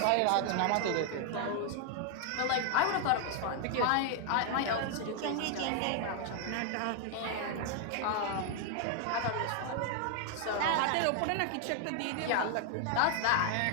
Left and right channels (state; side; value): different; both; correlation 0.00